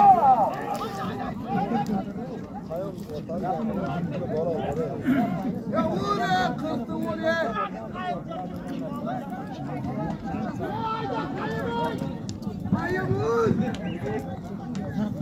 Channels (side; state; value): both; identical; correlation 1.00